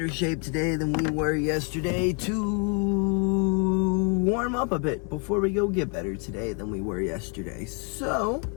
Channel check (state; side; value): quieter; right; 37.0 dB